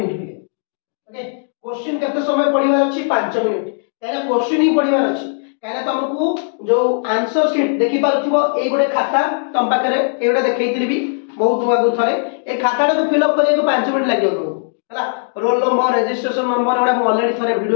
पे ओके क्वेश्चन केते समय पढिबार अछि 5 मिनिट काहे क्वेश्चन ही पढिबार अछि काहे तुमको जो आंसर शीट देखि पारथिबो ए गोटे खाता तम पाखरे एटा देखैतिली भी बहुत आगु थरे ए खाताटा को फिल अप करिया को 5 मिनिट लागियो हला। रोल नंबर रजिस्ट्रेशन नंबर एटा म ऑलरेडी थरे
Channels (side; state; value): right; silent; digital silence